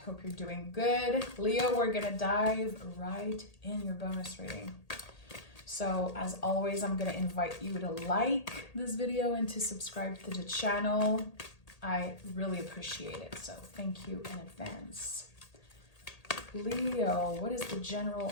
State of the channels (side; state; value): right; late; 1.8 ms